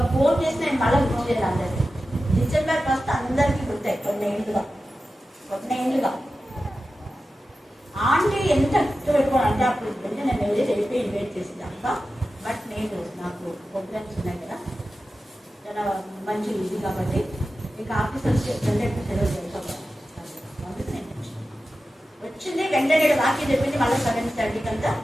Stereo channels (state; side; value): normal; both; correlation 0.93